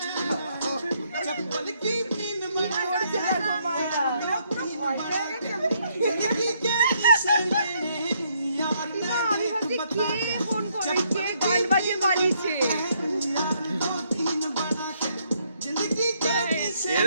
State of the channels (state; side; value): inverted; both; correlation -0.72